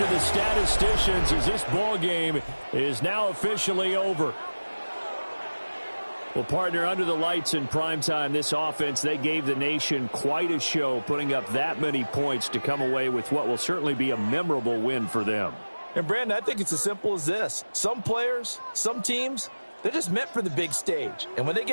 the statisticians as this ball game is now officially over. Well, partner, under the lights in primetime, this offense, they gave the nation quite a show, putting up that many points to come away with what will certainly be a memorable win for them. And, Brandon, I think it's as simple as this. Some players, some teams, they're just meant for the big stage. And when they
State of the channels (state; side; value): inverted; both; correlation -1.00